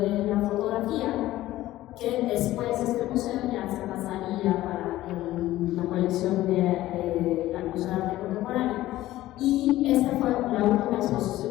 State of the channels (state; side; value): quieter; right; 15.5 dB